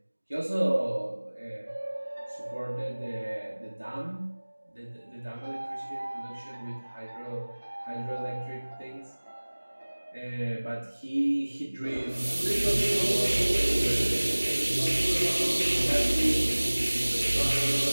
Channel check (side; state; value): both; inverted; correlation -1.00